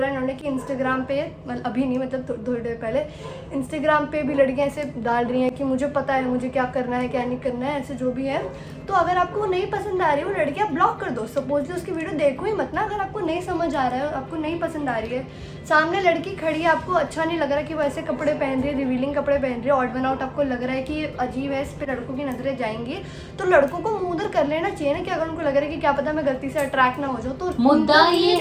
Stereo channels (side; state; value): both; identical; correlation 1.00